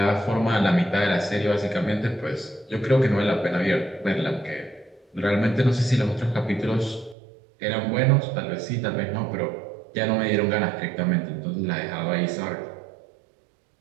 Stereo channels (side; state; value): left; drops out; at 7.2 s